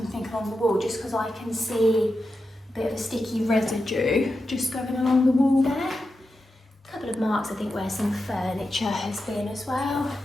along the wall, just because I can see a bit of a sticky residue just going along the wall there. A couple of marks, I think, where some furniture has been as well.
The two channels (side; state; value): both; normal; correlation 0.90